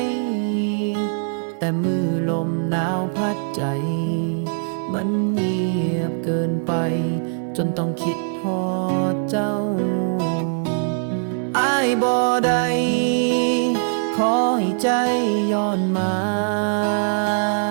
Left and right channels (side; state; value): left; silent; 64 dB below the other